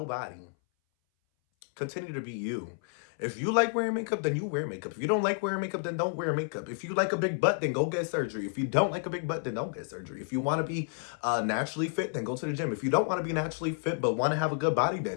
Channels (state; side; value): silent; right; 57 dB below the other